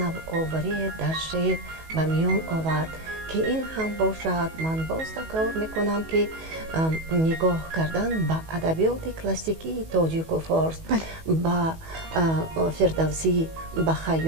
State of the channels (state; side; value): late; left; 19 ms